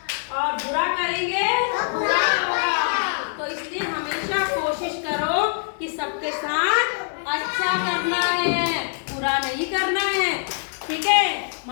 और बुरा करेंगे तो बुरा होगा। तो इसलिए हमेशा कोशिश करो कि सबके साथ अच्छा करना है, बुरा नहीं करना है। ठीक है,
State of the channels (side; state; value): right; silent; digital silence